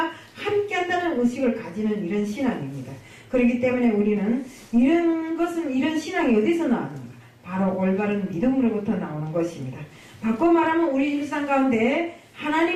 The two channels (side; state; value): both; identical; correlation 1.00